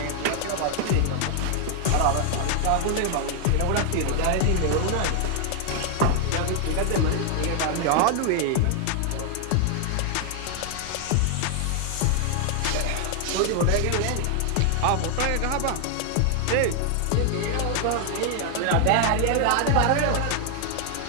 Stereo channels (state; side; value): different; both; correlation 0.00